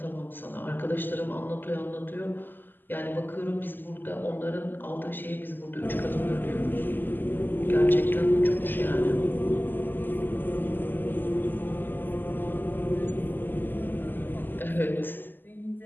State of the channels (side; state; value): right; late; 0.091 ms